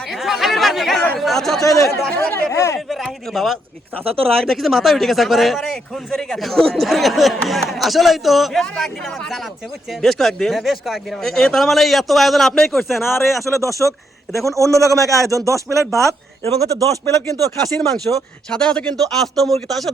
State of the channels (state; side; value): normal; both; correlation 0.77